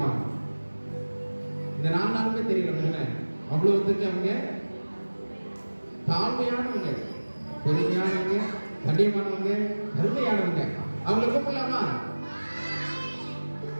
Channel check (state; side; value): inverted; both; correlation -1.00